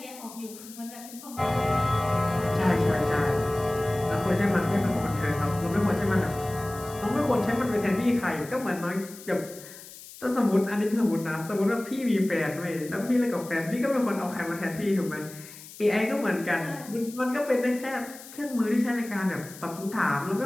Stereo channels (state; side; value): noise; left; hiss, 17 dB below the sound